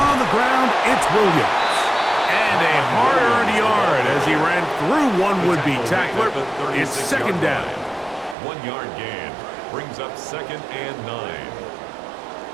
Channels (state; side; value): drops out; left; at 8.3 s